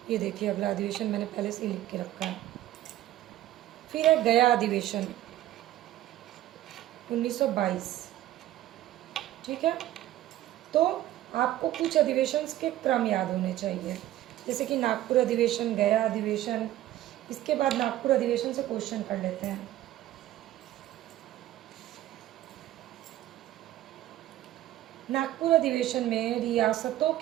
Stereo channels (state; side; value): quieter; left; 14.0 dB